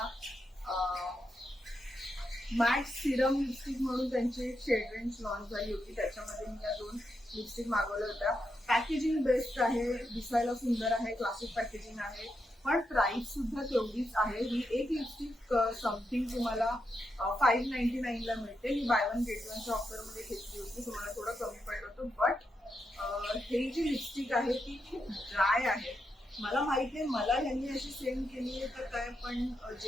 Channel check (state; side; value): normal; both; correlation 0.84